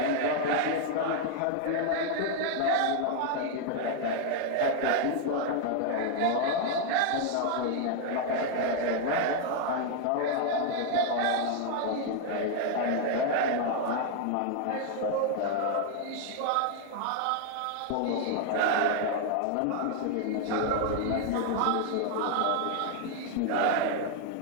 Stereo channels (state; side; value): different; both; correlation 0.00